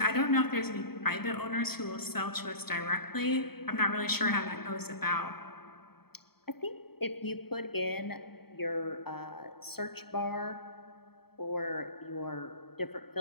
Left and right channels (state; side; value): late; right; 0.96 ms